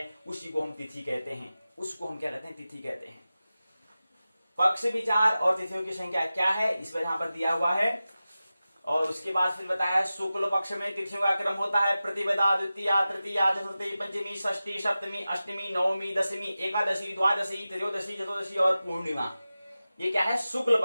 उसी को हम तिथि कहते हैं। उसको हम क्या कहते हैं? तिथि कहते हैं। पक्ष, विचार और तिथियों की संख्या क्या है, इस पर यहां पर दिया हुआ है। और उसके बाद फिर बताया शुक्ल पक्ष में तिथियों का क्रम होता है प्रतिपदा, द्वितीया, तृतीया, चतुर्थी, पंचमी, षष्ठी, सप्तमी, अष्टमी, नवमी, दशमी, एकादशी, द्वादशी, त्रयोदशी, चतुर्दशी और पूर्णिमा। ये क्या है? शुक्ल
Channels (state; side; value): inverted; both; correlation -0.95